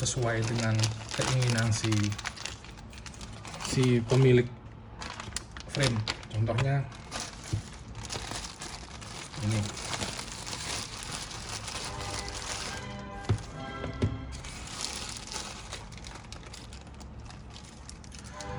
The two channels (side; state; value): both; identical; correlation 1.00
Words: dengan keinginan si pemilik frame. Contohnya ini.